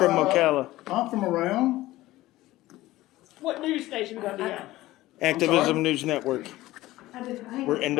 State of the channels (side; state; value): right; quieter; 17.0 dB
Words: Ocala. I'm from around. What news station gonna be on? Activism News Network. We're Yeah,